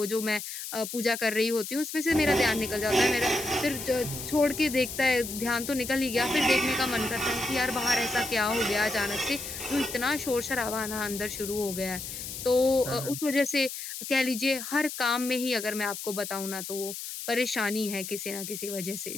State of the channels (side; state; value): left; noise; hiss, 8 dB below the sound